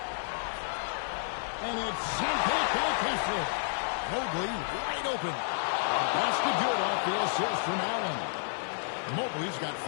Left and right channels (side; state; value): right; silent; 57 dB below the other